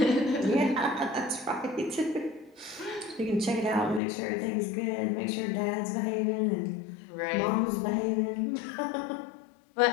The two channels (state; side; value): drops out; right; at 4.0 s